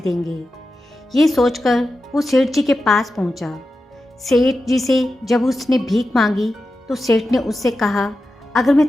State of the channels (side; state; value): both; normal; correlation 0.91